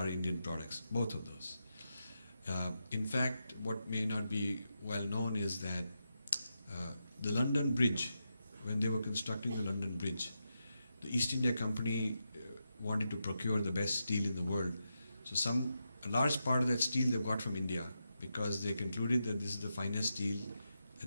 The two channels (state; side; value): inverted; both; correlation -0.86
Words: Indian products, both of those. In fact, what may not be well known is that the London Bridge, when they were constructing the London Bridge, the East India Company wanted to procure the best steel in the world. So a large part of that steel they got from India, because they concluded that this is the finest steel at